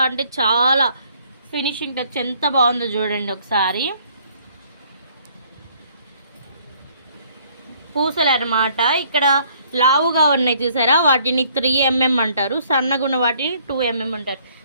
అంటే చాలా ఫినిషింగ్ టచ్ ఎంత బాగుందో చూడండి ఒకసారి. పూసలు అన్నమాట. ఇక్కడ లావుగా ఉన్నాయి చూసారా, వాటిని 3mm అంటారు, సన్నగా ఉన్న వాటిని 2mm అంటారు.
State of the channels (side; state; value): both; inverted; correlation -0.62